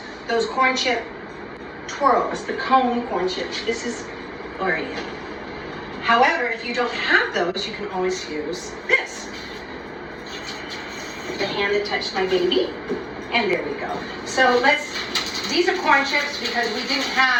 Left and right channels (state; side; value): identical; both; correlation 1.00